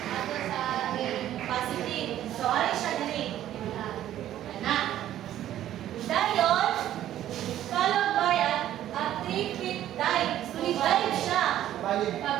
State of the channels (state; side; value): quieter; left; 12.3 dB